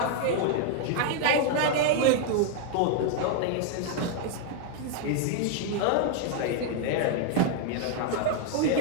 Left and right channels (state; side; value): different; both; correlation 0.00